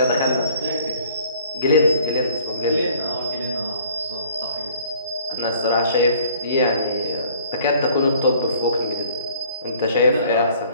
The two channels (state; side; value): inverted; both; correlation -0.56